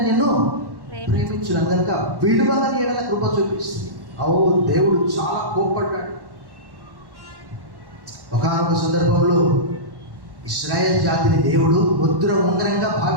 నిన్ను ప్రేమించున్నాను కనుక విడువని ఎడల కృప చూపిస్తుంది. దేవుడు చాలా కోప్పడ్డాడు. ఒకానొక సందర్భంలో ఇశ్రాయేల్ జాతిని దేవుడు ముద్ర ఉంగరంగా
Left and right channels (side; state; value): left; late; 1.1 ms